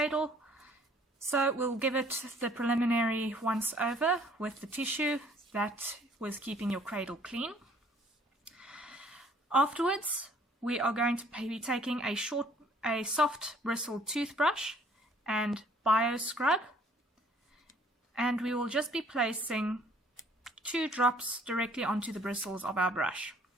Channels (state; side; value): normal; both; correlation 0.58